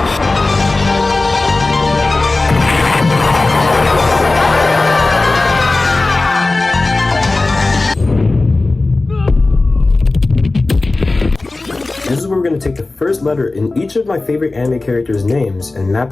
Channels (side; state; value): right; quieter; 3.3 dB